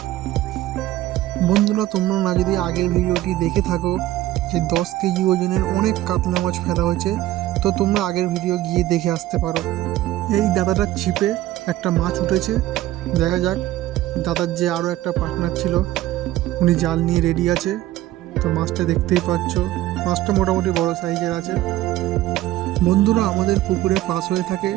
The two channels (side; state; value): left; quieter; 15.1 dB